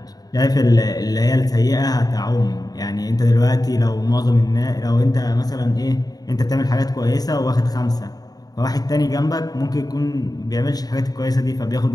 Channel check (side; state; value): right; late; 0.18 ms